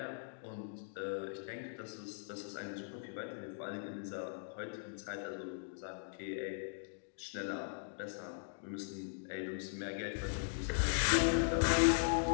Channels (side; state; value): right; silent; digital silence